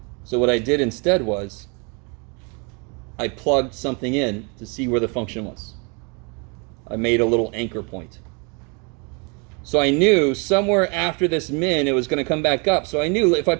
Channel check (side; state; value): left; quieter; 33.3 dB